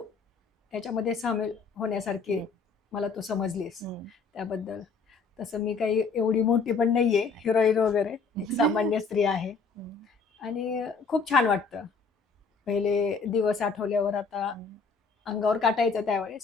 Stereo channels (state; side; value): quieter; right; 4.8 dB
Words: ह्याच्यामध्ये सामील होण्यासारखी मला तू समजलीस, त्याबद्दल. तसं मी काही एवढी मोठी पण नाहीये हिरोईन वगैरे, एक सामान्य स्त्री आहे. आणि खूप छान वाटतं. पहिले दिवस आठवल्यावर आता अंगावर काटा यायचा